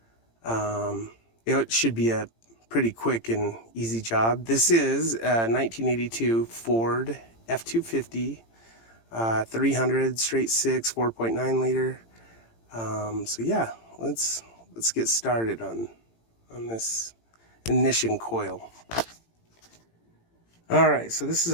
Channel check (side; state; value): right; late; 18 ms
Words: it should be a pretty quick and easy job. This is a 1982 Ford F-250 300 straight 6 4.9 liter. So yeah, let's get started on this ignition coil. All right, so this is